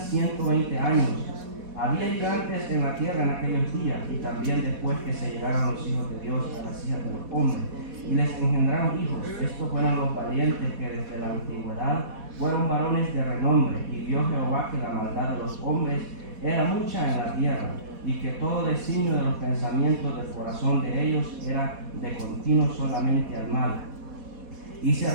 120 años. Había gigantes en la tierra en aquellos días, y también después que se llegaron los hijos de Dios a las hijas de los hombres, y les engendraron hijos. Estos fueron los valientes que desde la antigüedad fueron varones de renombre. Y vio Jehová que la maldad de los hombres era mucha en la tierra, y que todo designio de los pensamientos del corazón de ellos era de continuo solamente al mal. Y se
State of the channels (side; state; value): left; late; 4.1 ms